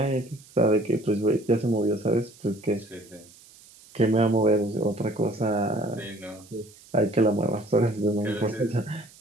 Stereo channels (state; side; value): noise; right; hiss, 24 dB below the sound